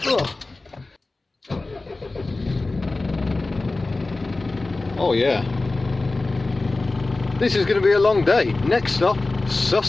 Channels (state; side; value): quieter; right; 3.3 dB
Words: Oh yeah, this is going to be a long day. Next stop,